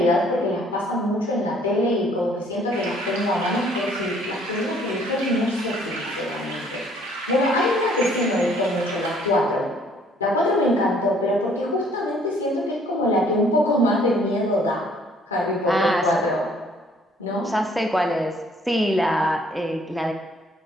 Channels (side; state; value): both; normal; correlation 0.60